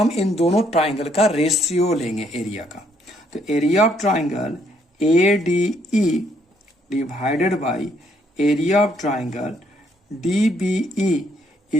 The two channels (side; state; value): both; normal; correlation 0.70